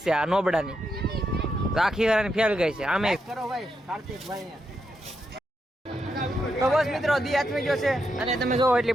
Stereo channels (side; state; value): both; normal; correlation 0.83